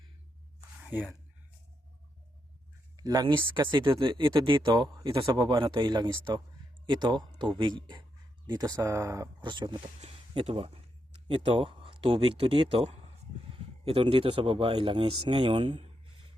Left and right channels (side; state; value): both; normal; correlation 0.82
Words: ayan, langis kasi ito dito, ito sa baba na to ay langis to, ito tubig dito sa portion na to, ito ba, ito tubig to dito, ito dito sa baba ay langis. Ngayon